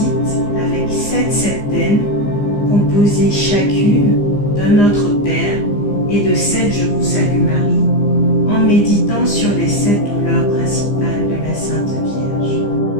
avec 7 septaines composées chacune d'un Notre Père et de 7 Je vous salue Marie, en méditant sur les 7 douleurs principales de la Sainte Vierge.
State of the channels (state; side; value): late; right; 15 ms